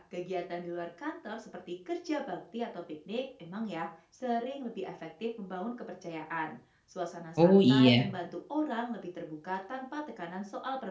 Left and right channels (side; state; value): both; identical; correlation 1.00